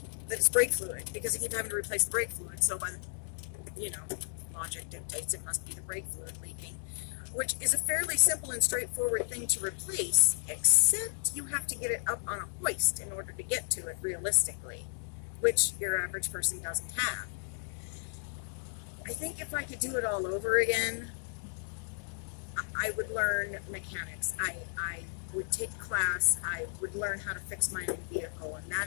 that it's brake fluid, because I keep having to replace the brake fluid. So by logic dictates it must be the brake fluid leaking, which is a fairly simple and straightforward thing to replace, except you have to get it up on a hoist in order to get to it realistically, which your average person doesn't have. I think if I could do it all over again, I would learn mechanics. I would take a class. I would learn how to fix my own vehicle, and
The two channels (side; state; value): right; silent; digital silence